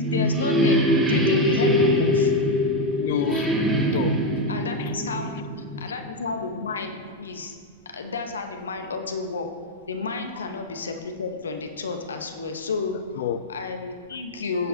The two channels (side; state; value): right; noise; rumble, 29 dB below the sound